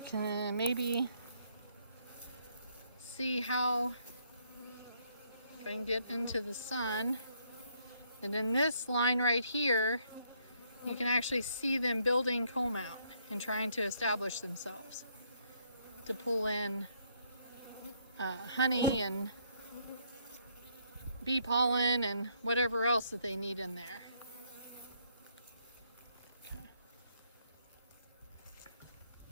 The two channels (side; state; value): both; inverted; correlation -0.70